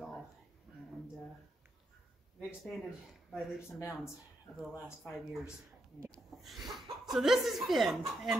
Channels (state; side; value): normal; both; correlation 0.81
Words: all, and we've expanded by leaps and bounds over the last 5 years. So this is Finn,